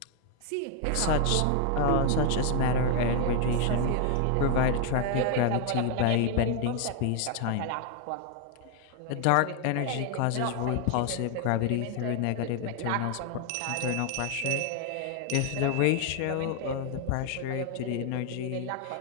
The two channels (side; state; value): both; different; correlation 0.00